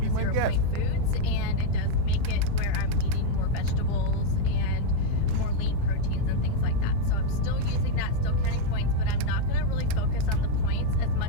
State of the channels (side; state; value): both; different; correlation 0.01